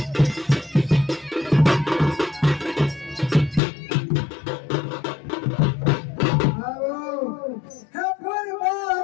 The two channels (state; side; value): drops out; right; at 3.6 s